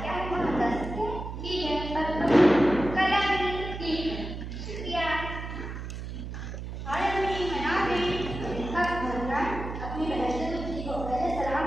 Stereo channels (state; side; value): noise; right; hum, 7 dB below the sound